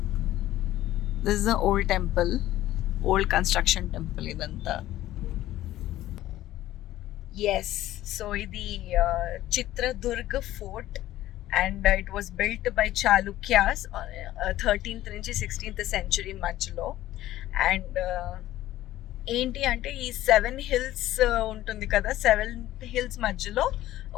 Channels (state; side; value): quieter; right; 14.5 dB